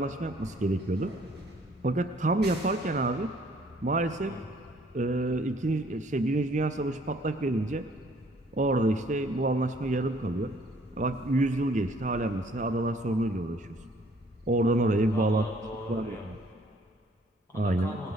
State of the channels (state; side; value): normal; both; correlation 0.60